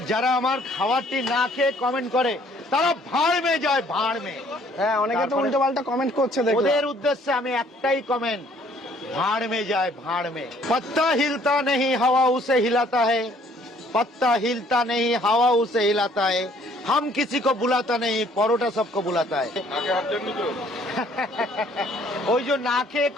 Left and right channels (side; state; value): both; normal; correlation 0.60